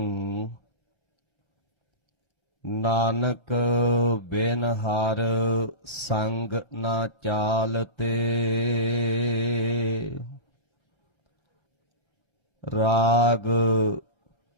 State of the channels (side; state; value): left; late; 5.8 ms